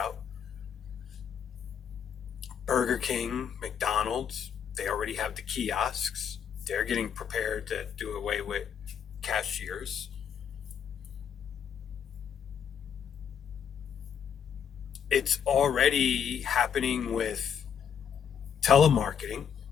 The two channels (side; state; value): right; quieter; 7.9 dB